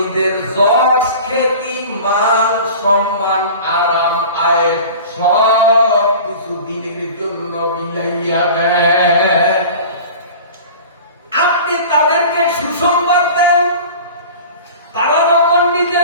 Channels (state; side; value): inverted; both; correlation -0.38